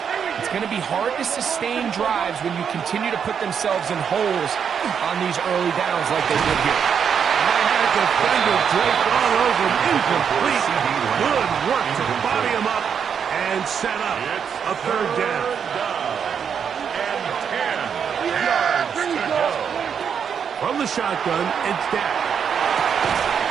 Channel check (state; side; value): quieter; left; 7.3 dB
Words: It's going to be hard to sustain drives when you continue to put themselves in holes on these early downs like they did here. I had a defender draped all over him. Incomplete. Good work to body him up and set up a third down. And 10 yards to go. From the shotgun, it's Dak.